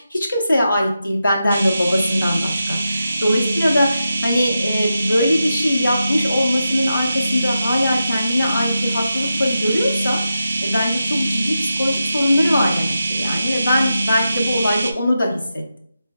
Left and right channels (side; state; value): both; inverted; correlation -0.89